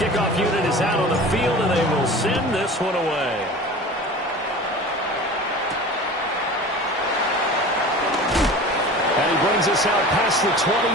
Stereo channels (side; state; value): both; normal; correlation 0.37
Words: unit is out on the field, and they will send this one away. And he brings us out past the